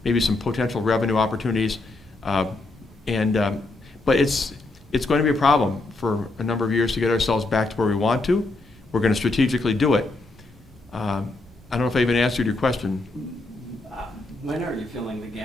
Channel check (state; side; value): quieter; right; 3.1 dB